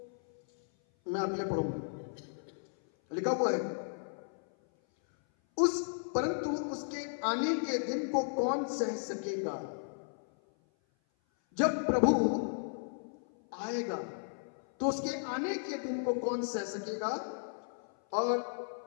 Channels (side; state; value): right; silent; 55 dB below the other